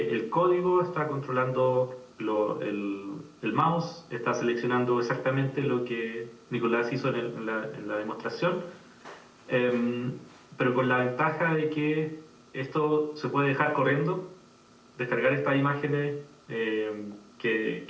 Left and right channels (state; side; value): identical; both; correlation 1.00